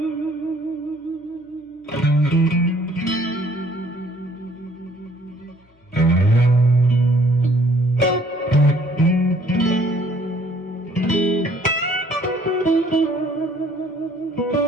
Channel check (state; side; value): normal; both; correlation 0.60